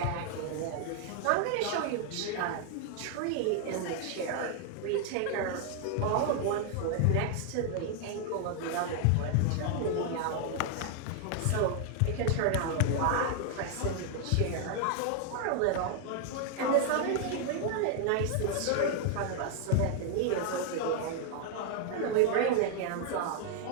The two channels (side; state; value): both; different; correlation 0.00